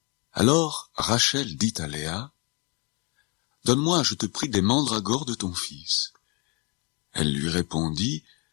Alors Rachel dit à Léa, « Donne-moi, je te prie, des mandragores de ton fils. » Elle lui répondit,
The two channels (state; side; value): quieter; right; 31.4 dB